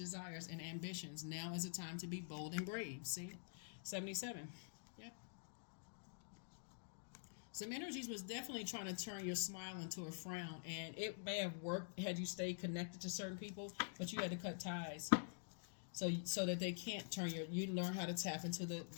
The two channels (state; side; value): silent; right; digital silence